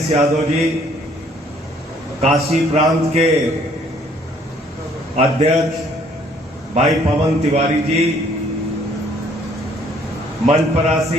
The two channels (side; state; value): both; normal; correlation 0.62